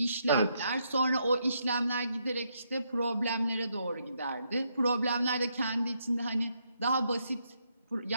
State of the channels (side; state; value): both; inverted; correlation -0.77